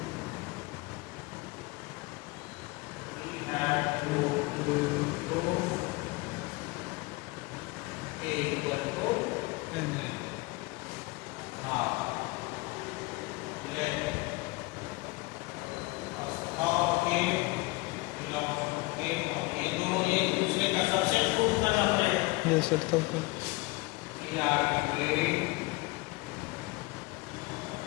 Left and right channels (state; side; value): quieter; right; 24.0 dB